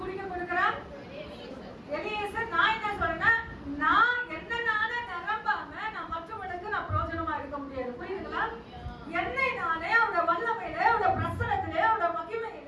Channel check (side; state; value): both; identical; correlation 1.00